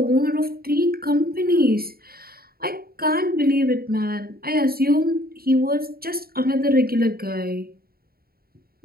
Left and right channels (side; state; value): left; late; 0.44 ms